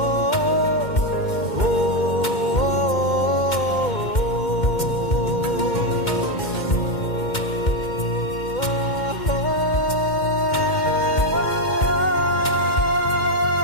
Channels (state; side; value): late; right; 2.1 ms